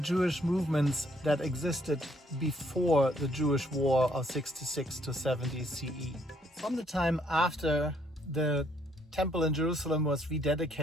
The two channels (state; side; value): normal; both; correlation 0.68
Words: movements that existed before the Jewish War of 66 to 70 CE. From the time after the temple in Jerusalem was